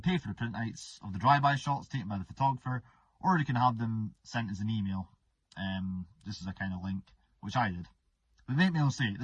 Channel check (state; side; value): identical; both; correlation 1.00